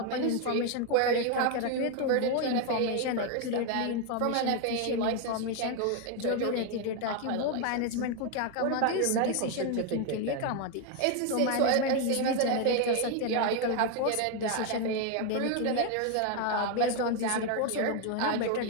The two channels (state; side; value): different; both; correlation 0.01